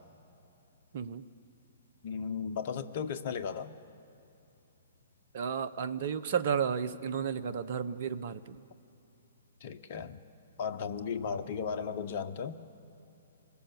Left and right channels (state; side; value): inverted; both; correlation -0.52